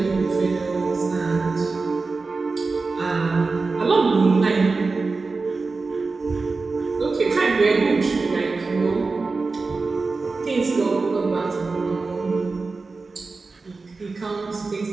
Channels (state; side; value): quieter; left; 4.0 dB